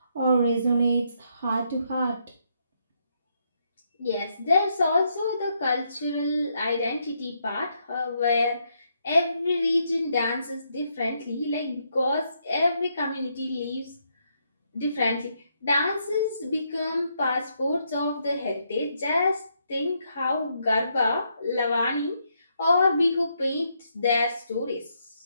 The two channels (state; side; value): inverted; both; correlation -0.77